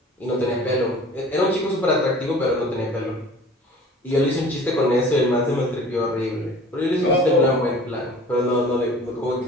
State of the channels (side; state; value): both; normal; correlation 0.45